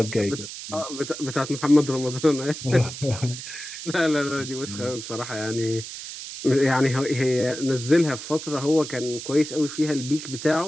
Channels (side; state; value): right; noise; hiss, 10 dB below the sound